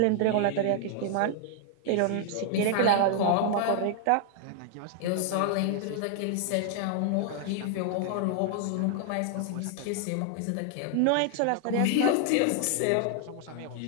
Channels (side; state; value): both; different; correlation 0.00